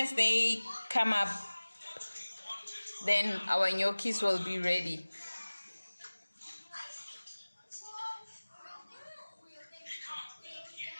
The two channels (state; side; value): inverted; both; correlation -1.00